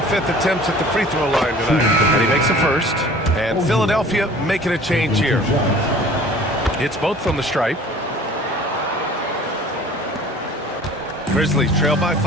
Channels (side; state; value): both; normal; correlation 0.47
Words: 5th attempts at the free throw line tonight. And he makes a first. And Philadelphia making a change here. It's both from the stripe. Grizzlies trail by